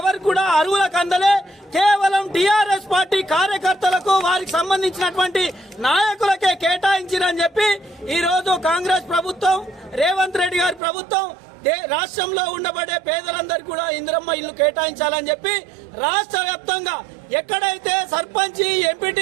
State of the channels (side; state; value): left; drops out; at 10.8 s